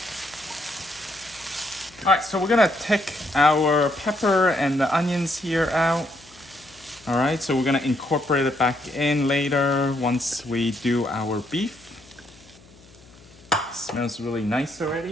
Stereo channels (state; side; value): noise; left; hum, 25 dB below the sound